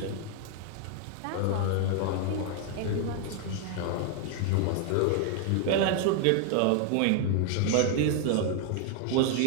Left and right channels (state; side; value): different; both; correlation 0.00